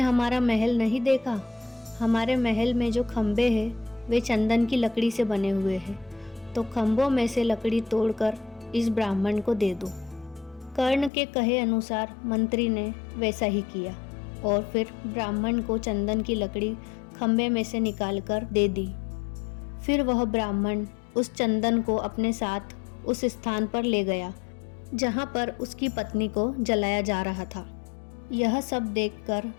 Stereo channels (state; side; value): drops out; right; at 11.1 s